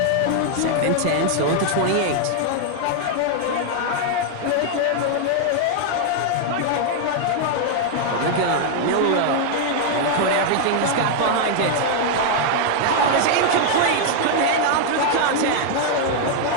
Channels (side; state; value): both; different; correlation 0.00